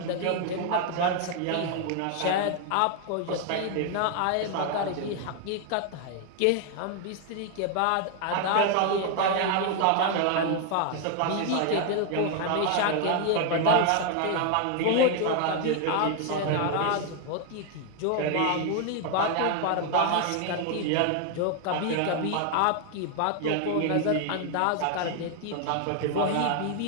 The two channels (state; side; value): different; both; correlation 0.00